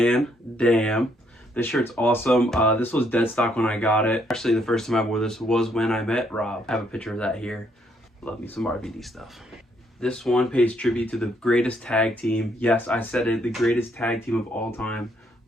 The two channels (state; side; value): normal; both; correlation 0.71